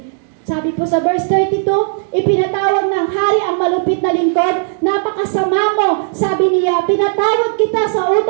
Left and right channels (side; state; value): left; silent; digital silence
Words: Sabi po sa verse 32, ipinatawag ng hari ang malupit na lingkod, napakasama mo, sabi niya, pinatawad kita sa